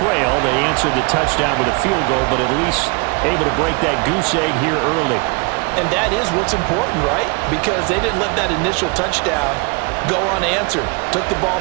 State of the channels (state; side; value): quieter; left; 30.4 dB